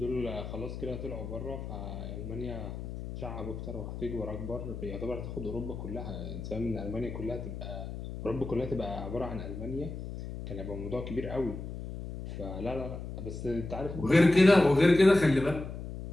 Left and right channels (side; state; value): left; noise; hum, 8 dB below the sound